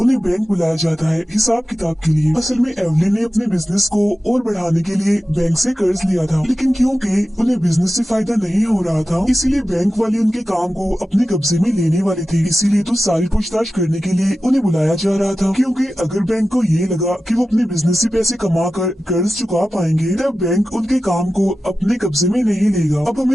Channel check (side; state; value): both; normal; correlation 0.94